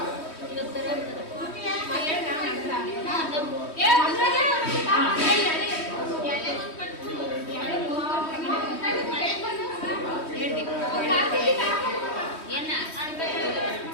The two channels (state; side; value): late; right; 3.1 ms